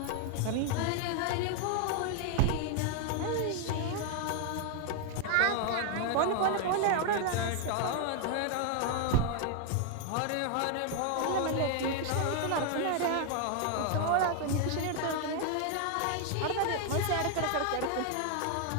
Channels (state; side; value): different; both; correlation 0.00